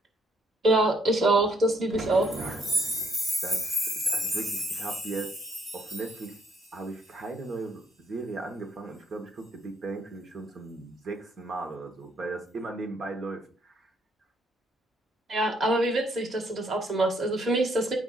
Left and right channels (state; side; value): normal; both; correlation 0.69